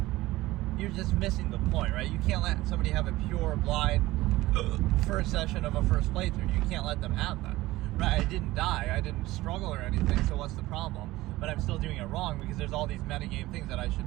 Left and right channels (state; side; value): quieter; left; 18.0 dB